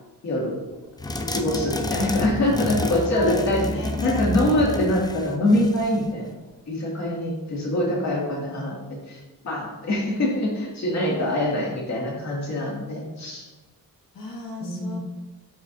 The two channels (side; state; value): both; normal; correlation 0.34